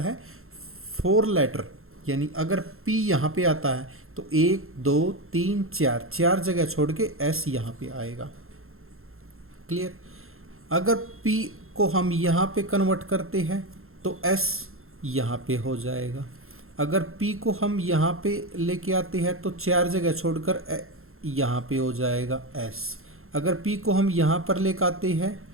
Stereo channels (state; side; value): late; left; 0.62 ms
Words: है 4 लेटर, यानी अगर P यहाँ पे आता है तो 1 2 3 4 4 जगह छोड़ के S यहाँ पे आएगा। क्लियर। अगर P को हम यहाँ पे कन्वर्ट करते हैं तो S यहाँ पे हो जाएगा। अगर P को हम यहाँ पे लेके आते हैं तो 4 जगह छोड़कर यहाँ पे हो जाएगा S। अगर P को हम यहाँ पर लेके आते हैं